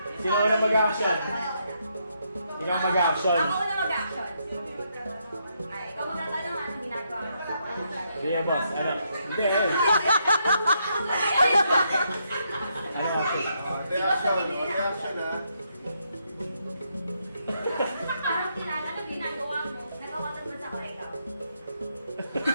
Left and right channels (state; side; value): inverted; both; correlation -0.77